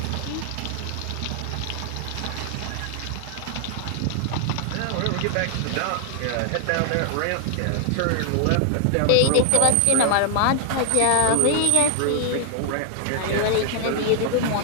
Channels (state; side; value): different; both; correlation 0.00